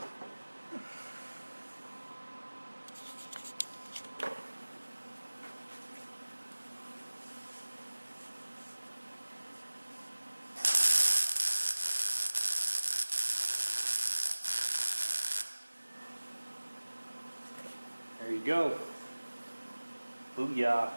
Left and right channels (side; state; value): both; inverted; correlation -1.00